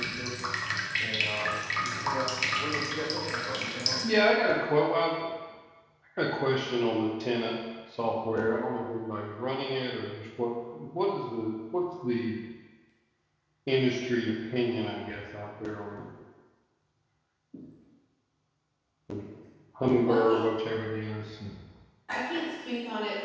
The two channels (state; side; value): identical; both; correlation 1.00